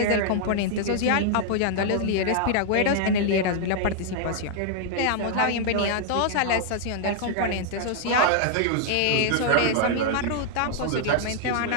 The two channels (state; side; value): different; both; correlation -0.01